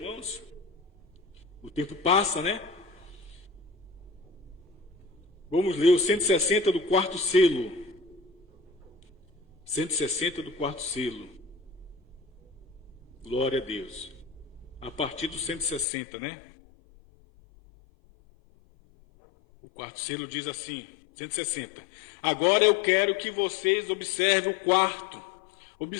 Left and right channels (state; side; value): drops out; right; at 15.9 s